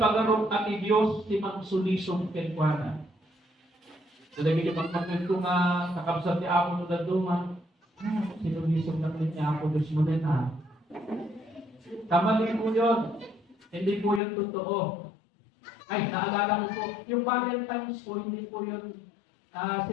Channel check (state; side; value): drops out; right; at 14.2 s